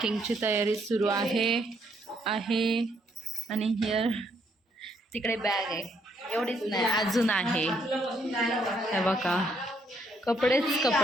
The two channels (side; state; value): both; normal; correlation 0.72